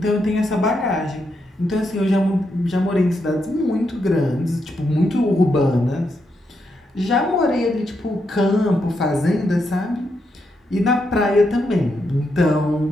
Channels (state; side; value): normal; both; correlation 0.81